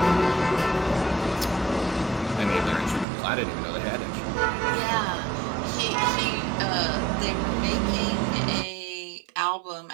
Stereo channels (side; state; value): left; drops out; at 3.1 s